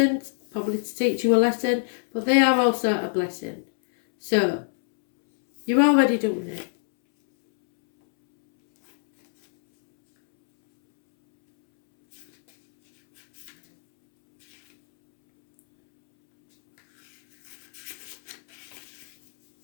probably to teach you a lesson, but they are also a blessing. So you're already doing it.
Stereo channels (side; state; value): right; silent; 63 dB below the other